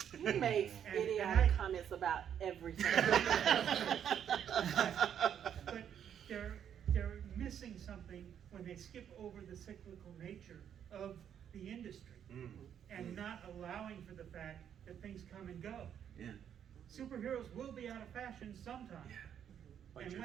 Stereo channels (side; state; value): left; quieter; 9.0 dB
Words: He makes And idiotic comments about everything. But they're missing something when they skip over the cyclical nature of the industry and not allowing for the fact that things come and go. Yeah. Superheroes will be out of fashion sometime. Bite And your